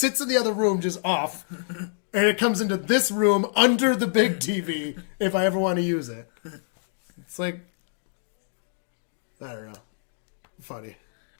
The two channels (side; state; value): right; silent; digital silence